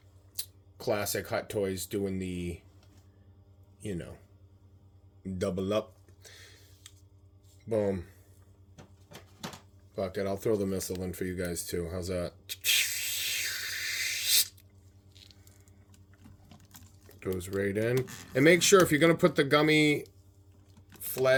Classic Hot Toys doing the, you know, double up. Boom. Fuck it, I'll throw the missile in for you guys too. How's that? Goes right in. And make sure if you're going to put the gummy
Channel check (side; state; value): both; identical; correlation 1.00